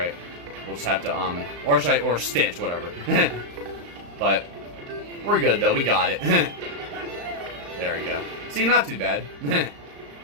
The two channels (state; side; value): late; left; 35 ms